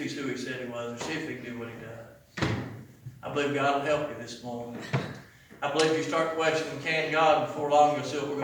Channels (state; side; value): identical; both; correlation 1.00